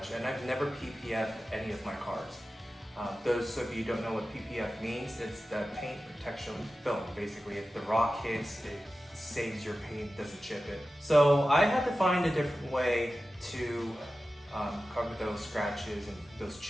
and I've never PPF'd any of my cars. Those of you who don't know what PPF means, it's the paint protection film. Basically, if the rock hits, it saves your paint, doesn't chip it. So I had to find a different way to cover those scratches and those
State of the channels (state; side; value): normal; both; correlation 0.94